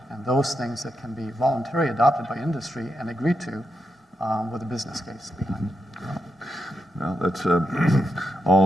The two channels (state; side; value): normal; both; correlation 0.85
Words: and those things that can be voluntarily adopted by industry and agreed to with a business case behind it. Well, that's